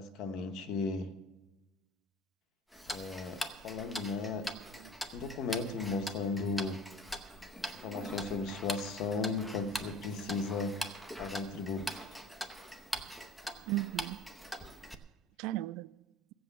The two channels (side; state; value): both; normal; correlation 0.42